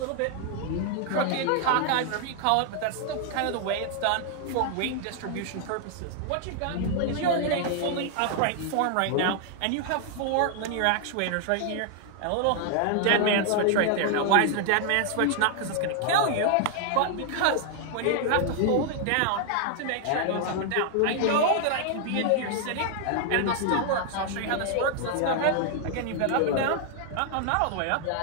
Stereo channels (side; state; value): both; different; correlation 0.00